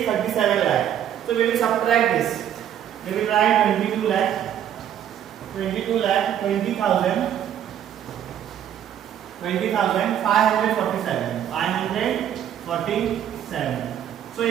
37 lakh. So we will subtract this. We will write 22 lakh 20,547. So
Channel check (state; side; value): quieter; left; 10.2 dB